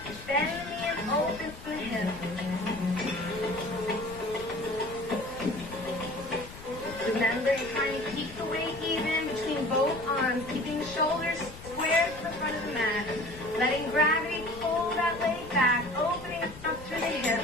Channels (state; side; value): noise; left; rumble, 15 dB below the sound